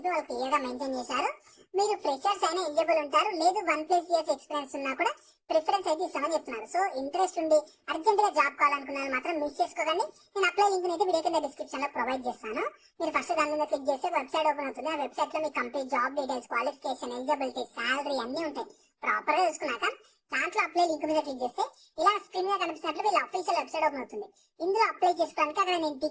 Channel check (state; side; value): identical; both; correlation 1.00